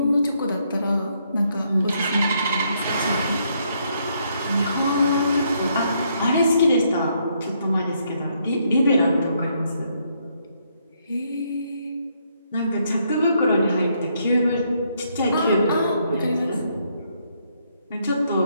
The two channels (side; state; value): both; inverted; correlation -0.73